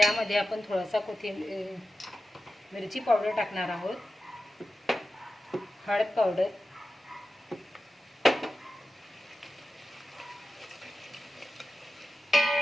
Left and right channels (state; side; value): normal; both; correlation 0.92